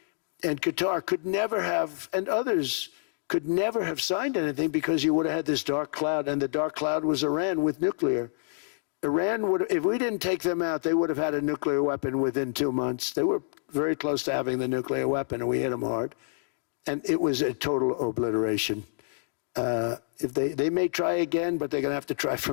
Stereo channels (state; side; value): silent; right; digital silence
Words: and Qatar could never have, and others could never have signed anything because you would have had this dark cloud, and the dark cloud was Iran with nuclear. Iran would, if we didn't take them out, they would have had a nuclear weapon within 2 months. They were very close to having the nuclear weapon, and we hit them hard. And it was a total obliteration. If they may try again, but they're going to have to try